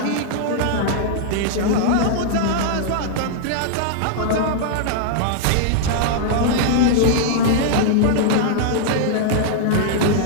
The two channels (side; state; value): both; different; correlation -0.01